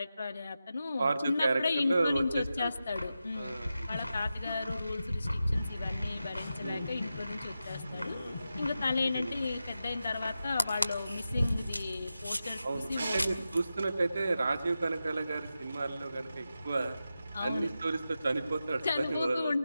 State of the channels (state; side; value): inverted; both; correlation -0.91